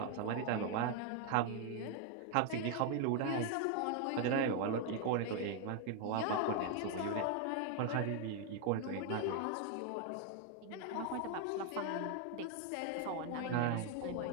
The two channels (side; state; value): both; different; correlation 0.00